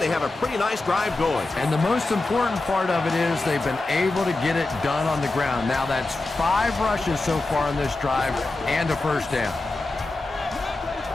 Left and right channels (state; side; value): quieter; right; 3.1 dB